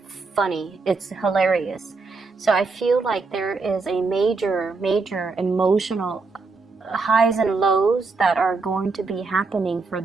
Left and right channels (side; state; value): left; quieter; 4.1 dB